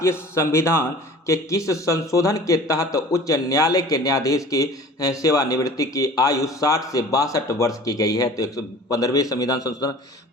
संविधान के किस संशोधन के तहत उच्च न्यायालय के न्यायाधीश की सेवानिवृत्ति की आयु 60 से 62 वर्ष की गई है? तो 115वें संविधान संशोधन।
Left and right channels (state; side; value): normal; both; correlation 0.44